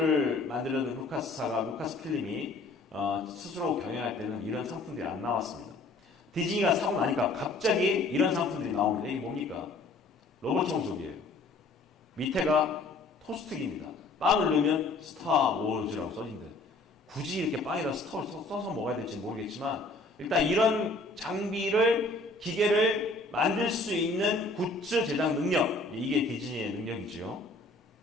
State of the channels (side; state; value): right; quieter; 3.1 dB